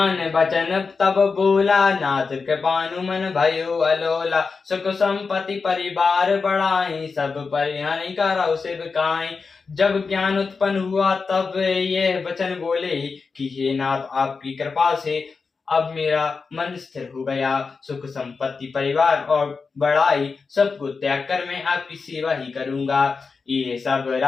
बचन तब बोला, नाथ कृपानु मन भयो अलोला। सुख संपत्ति परिवार बढ़ाई, सब परिहानि करौ सेवकाई। जब ज्ञान उत्पन्न हुआ तब ये वचन बोले कि हे नाथ, आपकी कृपा से अब मेरा मन स्थिर हो गया। सुख संपत्ति परिवार और बड़ाई सबको त्याग कर मैं आपकी सेवा ही करूंगा। ये सब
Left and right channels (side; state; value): right; quieter; 4.8 dB